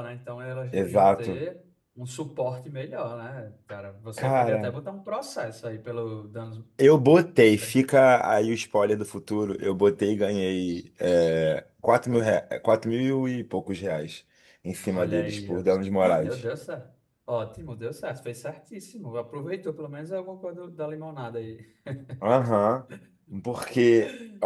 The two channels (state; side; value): identical; both; correlation 1.00